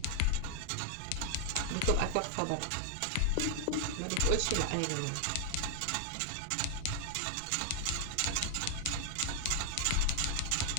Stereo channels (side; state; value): both; different; correlation 0.00